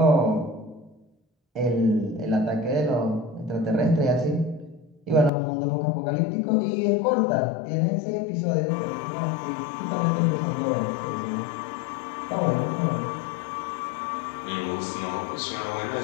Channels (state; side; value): drops out; right; at 5.3 s